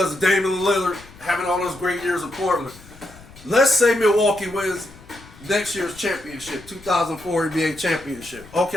of Damian Lillard having all those great years in Portland. Let's say Milwaukee wins next year's championship, 2004 NBA championship.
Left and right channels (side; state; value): left; noise; rumble, 21 dB below the sound